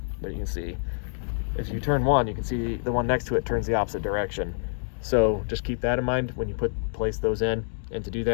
you can see if you turn one, you can see the one next to it turns the opposite direction. So just keep that in mind when you place those in. And to do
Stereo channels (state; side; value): silent; right; digital silence